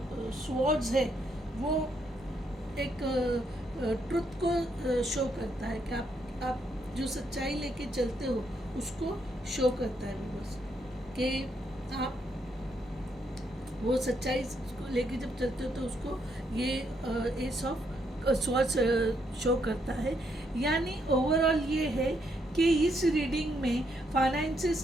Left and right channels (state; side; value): normal; both; correlation 0.75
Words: स्वॉर्ड्स है वो एक ट्रुथ को शो करता है कि आप जो सच्चाई लेके चलते हो उसको शो करता है बस, कि आप वो सच्चाई को लेके जब चलते हो तो उसको ये एस ऑफ स्वॉर्ड्स शो करता है। यानी ओवरऑल ये है कि इस रीडिंग में फाइनेंसेस